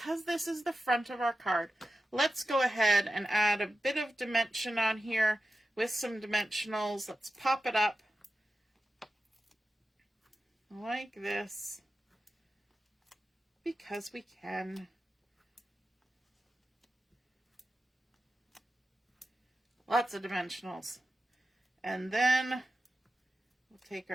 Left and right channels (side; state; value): both; normal; correlation 0.92